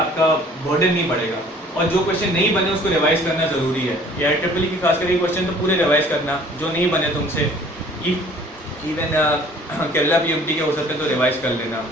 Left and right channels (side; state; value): both; normal; correlation 0.53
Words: बर्डन नहीं बढ़ेगा। और जो क्वेश्चन नहीं बने उसको रिवाइज करना ज़रूरी है। AIEEE की खास करके क्वेश्चन तो पूरे रिवाइज करना, जो नहीं बने तुमसे, इवन केरला PMT के हो सकते हैं तो रिवाइज कर लेना,